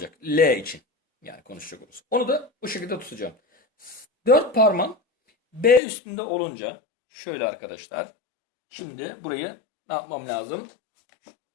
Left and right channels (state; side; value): drops out; right; at 5.8 s